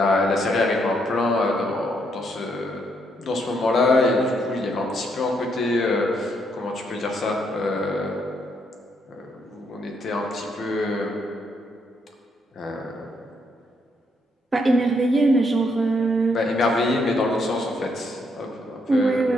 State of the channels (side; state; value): both; normal; correlation 0.75